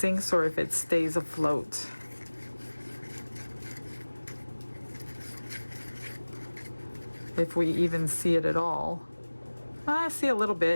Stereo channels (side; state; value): both; inverted; correlation -1.00